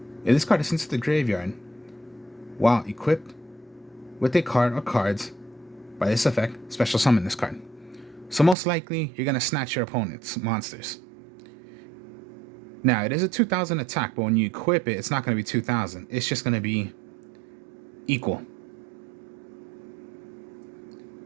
If this card is sent to the graveyard while equipped with a card or cards by this effect, special summon this card. So most likely, you're going to snatch your opponent's monsters. Now, it is a 2,000 attack, but when you equip it, it's not going to be 2,000. It's just going to be equal.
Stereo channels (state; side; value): drops out; left; at 8.6 s